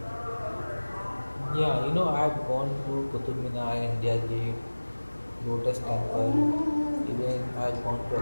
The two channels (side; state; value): both; inverted; correlation -1.00